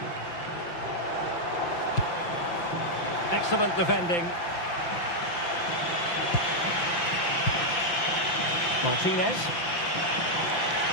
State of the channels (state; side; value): late; right; 5.9 ms